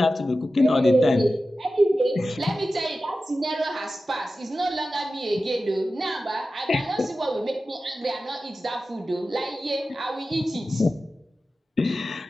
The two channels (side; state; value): both; normal; correlation 0.94